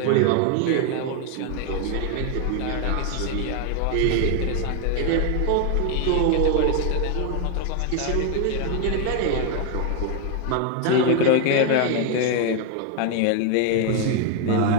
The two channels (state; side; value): different; both; correlation 0.01